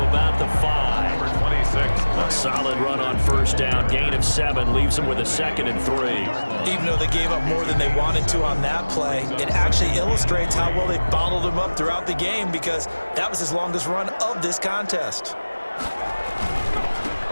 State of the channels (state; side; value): inverted; both; correlation -1.00